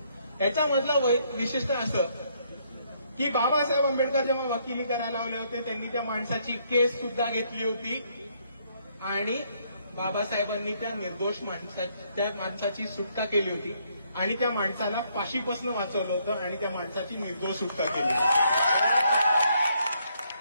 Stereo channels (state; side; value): inverted; both; correlation -0.71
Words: याचा मतलब विशिष्ट असं की बाबासाहेब आंबेडकर जेव्हा वकिली करायला आले होते त्यांनी त्या माणसाची केस सुद्धा घेतली होती आणि बाबासाहेबांनी त्या निर्दोष माणसाची सुटका केली होती आणि त्या माणसाला फाशीपासून वाचवलं होतं आणि त्या माणसाची निर्दोष सुटका केली।